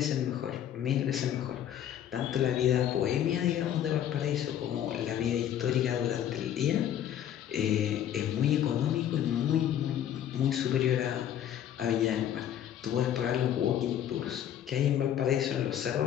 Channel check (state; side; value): quieter; right; 10.4 dB